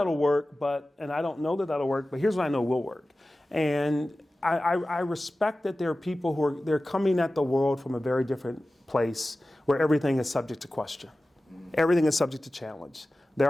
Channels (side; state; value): both; normal; correlation 0.96